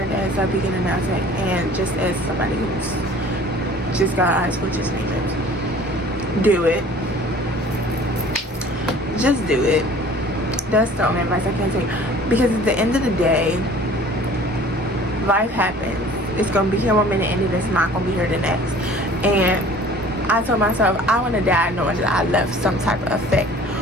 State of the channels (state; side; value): normal; both; correlation 0.48